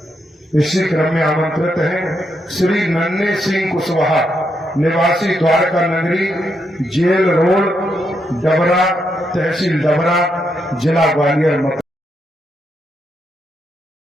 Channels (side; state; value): both; normal; correlation 0.80